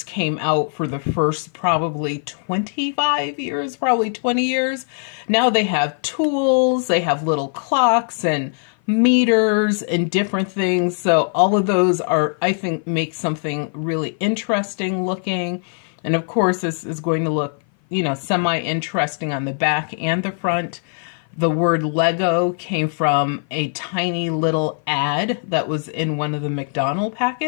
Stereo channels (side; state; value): right; silent; 56 dB below the other